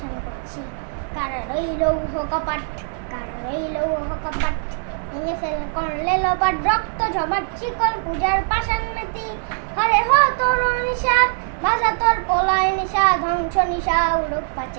করছি। কারা রইল উহ কপাট, কারা রইল উহ কপাট, ভেঙে ফেল করলে লোপাট, রক্ত জমাট চিকল পূজার পাষাণ মেতি। হরে হো তোর নিশা, বাজা তোর পলায় নিশা, ধ্বংস নিশা উড়ুক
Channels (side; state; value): left; silent; 65 dB below the other